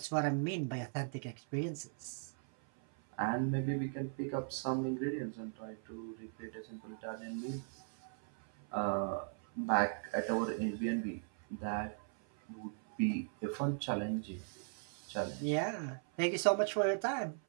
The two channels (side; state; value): left; silent; 52 dB below the other